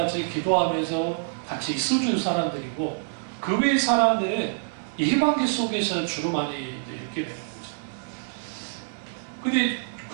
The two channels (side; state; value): left; silent; 61 dB below the other